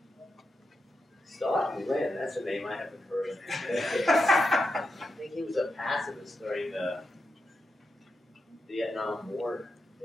Stoughton Lynd, that's a name I haven't heard of. I think he was a pacifist during the Vietnam War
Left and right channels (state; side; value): normal; both; correlation 0.87